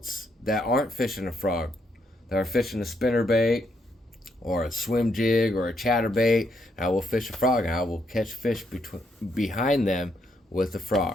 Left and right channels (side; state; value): both; normal; correlation 0.76